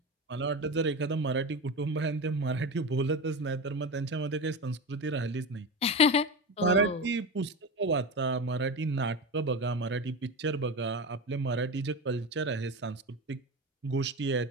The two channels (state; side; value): normal; both; correlation 0.23